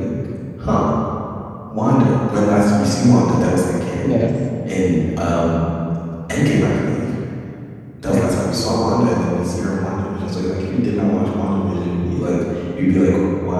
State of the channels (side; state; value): both; identical; correlation 1.00